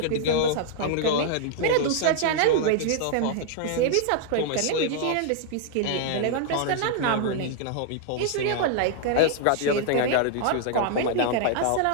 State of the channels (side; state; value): both; different; correlation -0.01